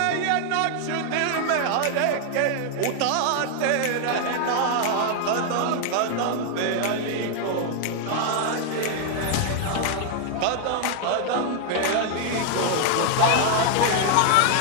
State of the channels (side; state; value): both; different; correlation 0.00